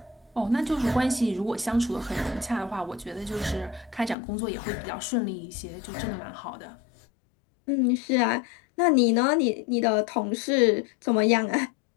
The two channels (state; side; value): drops out; right; at 4.2 s